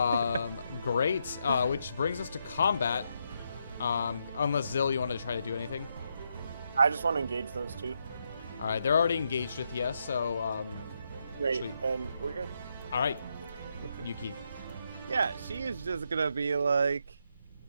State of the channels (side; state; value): both; inverted; correlation -0.80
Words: Great. Which brings us to combat. Unless Zil, you want to try to do anything? I just want to engage those two. All right, they're already engaged with you, so Great. Sweet. And we're good. all right, Yuki. Yeah, she is just gonna be like,